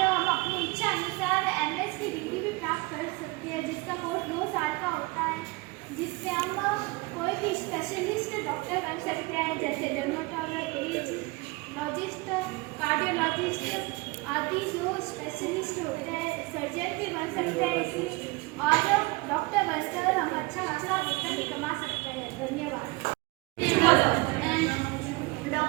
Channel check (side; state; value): left; quieter; 24.5 dB